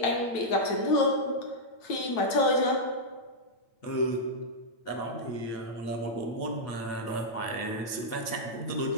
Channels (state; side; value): late; right; 8.9 ms